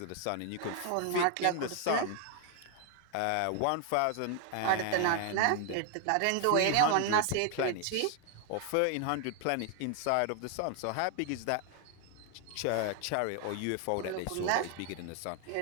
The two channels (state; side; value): different; both; correlation 0.00